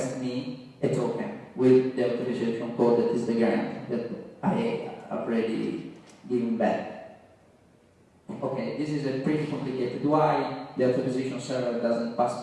me a token with the authorization code that is the grant that I already given back. Okay, this is a pretty complicated. Why the authorization server doesn't pass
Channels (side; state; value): both; identical; correlation 1.00